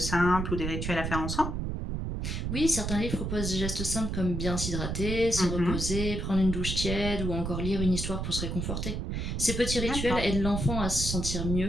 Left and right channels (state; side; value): noise; right; rumble, 2 dB below the sound